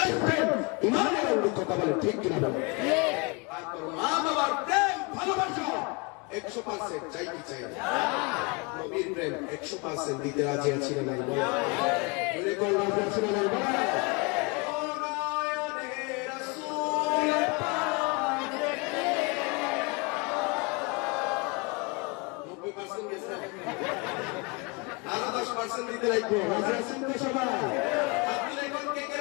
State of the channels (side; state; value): right; quieter; 28.9 dB